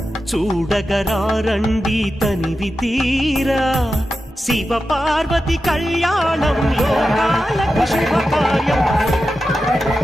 చూడగరారండి తనివి తీరా శివ పార్వతి కళ్యాణం లోకాలకు శుభకార్యం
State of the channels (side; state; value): both; normal; correlation 0.91